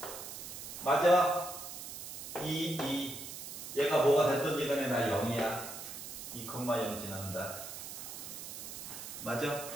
맞아? 2. 얘가 뭐가 됐든지 간에 나 0이야. 2,0 지난다. 맞아?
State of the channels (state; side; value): noise; right; hiss, 9 dB below the sound